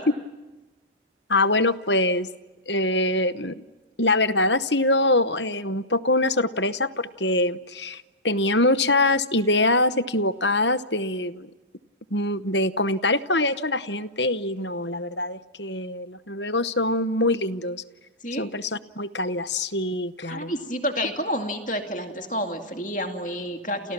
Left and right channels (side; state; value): both; normal; correlation -0.16